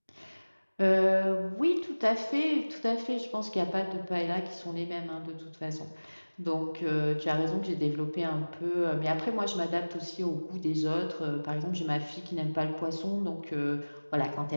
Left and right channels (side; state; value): both; inverted; correlation -1.00